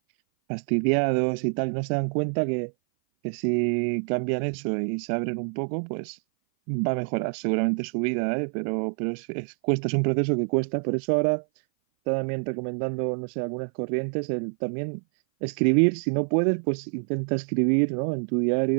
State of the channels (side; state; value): left; silent; 57 dB below the other